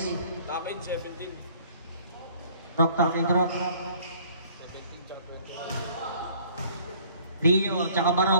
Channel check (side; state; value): both; inverted; correlation -0.55